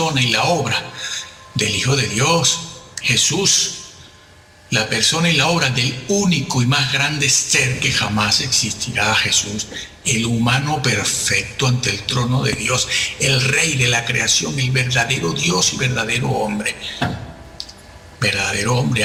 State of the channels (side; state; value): both; identical; correlation 1.00